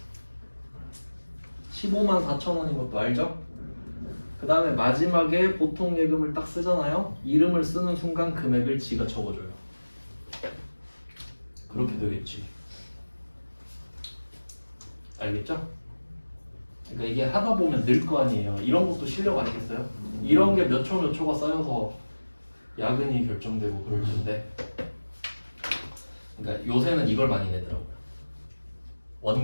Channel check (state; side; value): inverted; both; correlation -1.00